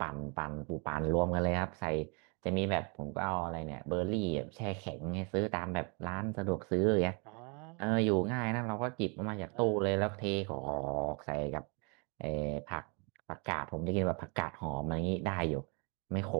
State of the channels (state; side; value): quieter; left; 34.1 dB